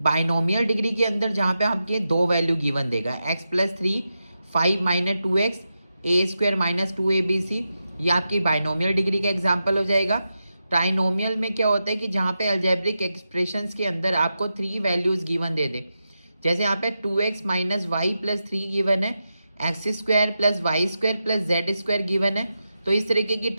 डिग्री के अंदर जहाँ पे आपके दो वैल्यू गिवन देगा, x+3, 5 - 2x, a² - 2abc, ये आपकी बाइनोमियल डिग्री का एग्जाम्पल हो जाएगा। ट्राइनोमियल में क्या होता है कि जहाँ पे अलजेब्रिक एक्सप्रेशंस के अंदर आपको 3 वैल्यूज गिवन दे दे। जैसे यहाँ पे 2x - y + 3 गिवन है, x² + y² + z² गिवन है। तो इस तरीके की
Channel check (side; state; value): both; inverted; correlation -0.89